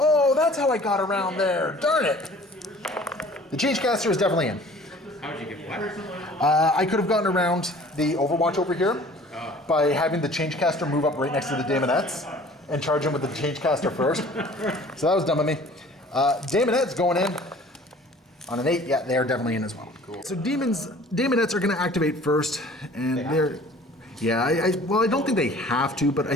that's how I got around there. Darn it. The Changecaster is definitely in. How would you get what? I could have gotten around the Overwatch over here by having the Changecaster move up right next to the Daemonettes and charge him with the Changecaster first. So that was dumb of me. Daemonettes going in on an 8. Yeah, they are definitely in as well. Cool. So Daemonettes are going to activate first, and they're... Yeah, I don't think they have to, but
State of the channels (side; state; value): both; normal; correlation 0.49